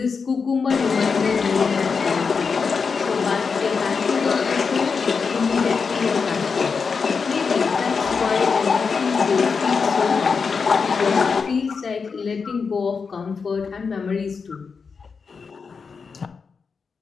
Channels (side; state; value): right; quieter; 5.3 dB